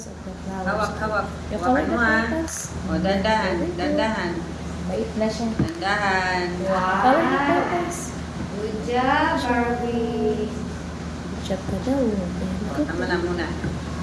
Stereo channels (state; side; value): identical; both; correlation 1.00